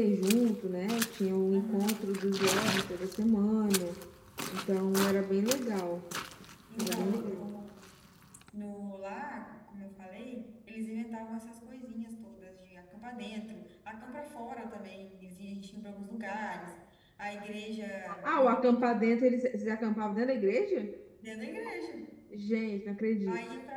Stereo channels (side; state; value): both; identical; correlation 1.00